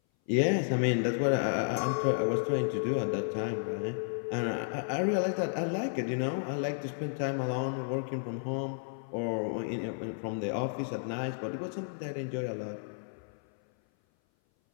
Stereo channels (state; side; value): silent; right; 56 dB below the other